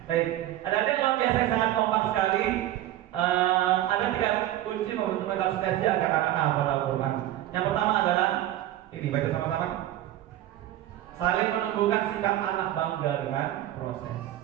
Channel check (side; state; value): left; quieter; 13.7 dB